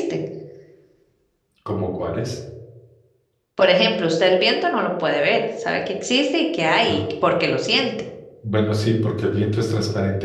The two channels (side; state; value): both; identical; correlation 1.00